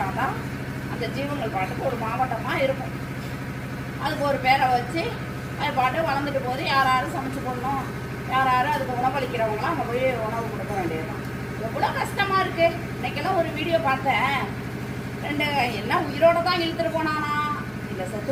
அந்த ஜீவங்கள் பாட்டுக்கு ஒரு மாவட்டமாக இருக்கும். அதுக்கு ஒரு பேரை வச்சு அது பாட்டு வளர்ந்துட்டு போது யார் யாரும் சமைச்சு போடணும், யார் யாரும் அதுக்கு உணவளிக்கிறவங்களாம் அங்கே போய் உணவு கொடுக்க வேண்டியதுதான். எவ்வளோ கஷ்டமாக இருக்குது. இன்றைக்கெல்லாம் ஒரு வீடியோ பார்த்தேன். 2 என்ன உயிரோடு தான் இழுத்துட்டு போனானா இல்லை செத்து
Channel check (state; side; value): identical; both; correlation 1.00